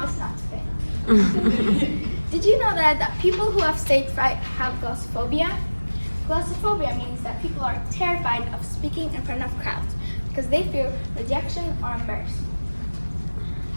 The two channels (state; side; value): inverted; both; correlation -1.00